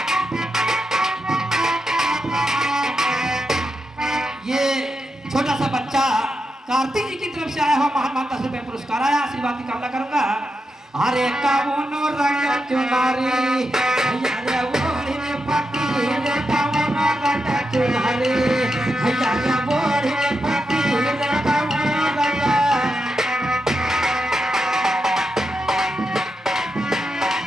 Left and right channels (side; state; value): both; normal; correlation 0.86